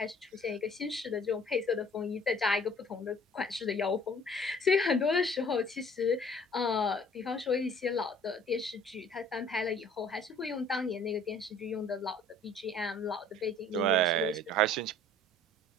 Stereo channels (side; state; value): both; normal; correlation 0.53